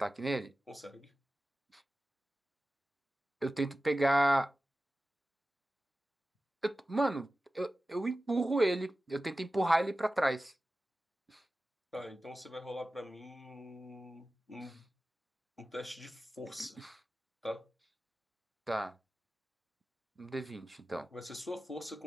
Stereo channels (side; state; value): both; normal; correlation 0.95